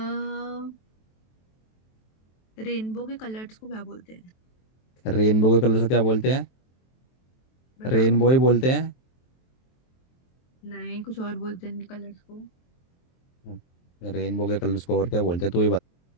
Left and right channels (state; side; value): late; right; 23 ms